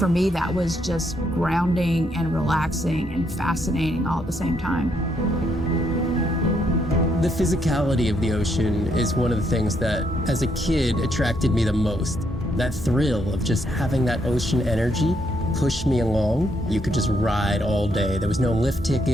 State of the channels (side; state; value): both; normal; correlation 0.74